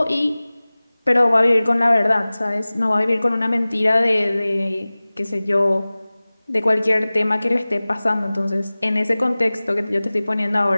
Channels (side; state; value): both; inverted; correlation -0.99